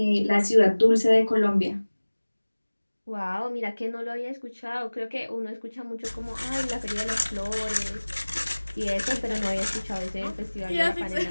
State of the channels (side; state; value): both; inverted; correlation -1.00